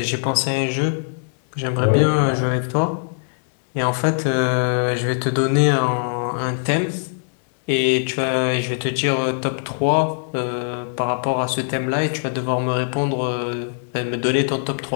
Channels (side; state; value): right; silent; 63 dB below the other